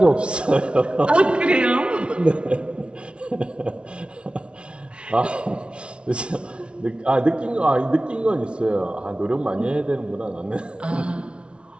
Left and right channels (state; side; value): late; left; 0.058 ms